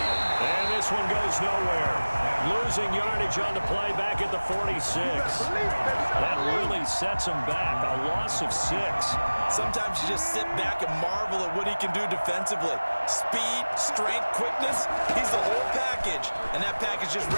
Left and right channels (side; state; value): both; inverted; correlation -1.00